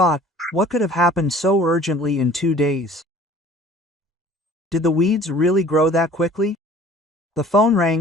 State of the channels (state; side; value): normal; both; correlation 0.49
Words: "what could have happened so urgently in 2 days? Did the weeds really grow that quickly?" The phone